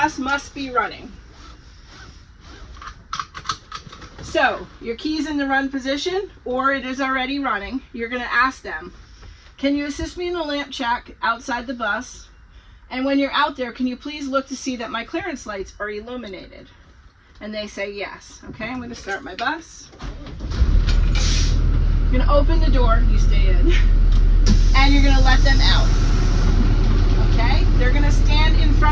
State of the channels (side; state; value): both; identical; correlation 1.00